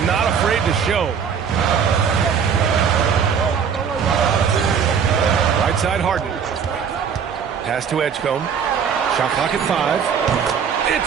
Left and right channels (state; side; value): quieter; left; 7.1 dB